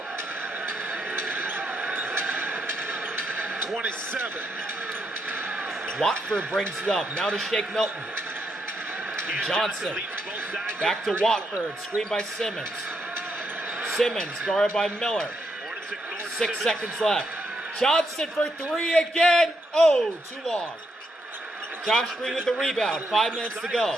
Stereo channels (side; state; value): both; normal; correlation 0.79